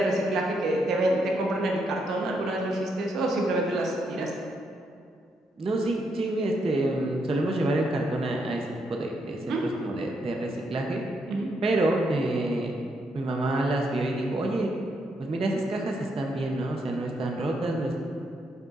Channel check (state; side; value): normal; both; correlation 0.78